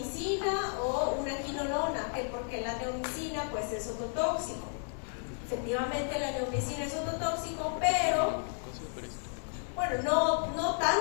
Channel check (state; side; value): silent; right; 56 dB below the other